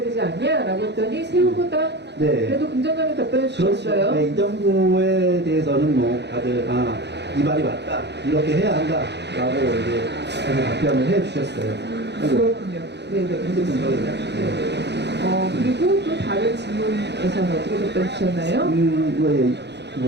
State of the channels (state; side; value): late; left; 0.50 ms